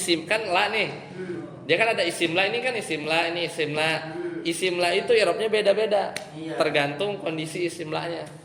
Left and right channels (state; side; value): identical; both; correlation 1.00